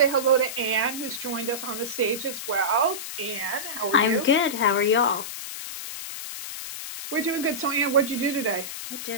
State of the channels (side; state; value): left; noise; hiss, 8 dB below the sound